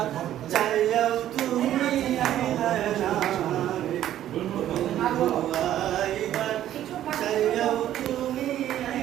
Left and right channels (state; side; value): quieter; left; 12.1 dB